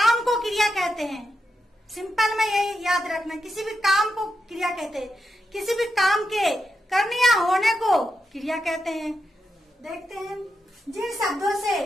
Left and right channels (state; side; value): normal; both; correlation 0.86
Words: को क्रिया कहते हैं। सिंपल में यही याद रखना, किसी भी काम को क्रिया कहते हैं। किसी भी काम के करने या होने को क्रिया कहते हैं। देखते हैं, जिन शब्दों से